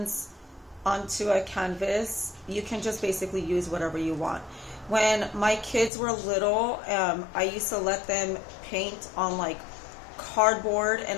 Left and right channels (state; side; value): drops out; right; at 5.9 s